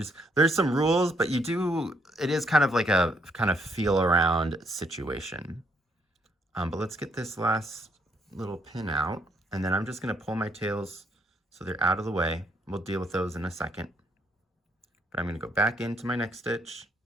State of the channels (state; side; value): normal; both; correlation 0.71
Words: there's some rules, but it is kind of like a kind of feel around situation. But let's get this last little pin out, and then I'm just going to pull my tails so they're out of the way. We'll deal with those in a second. But I'm going to go back into my next stitch,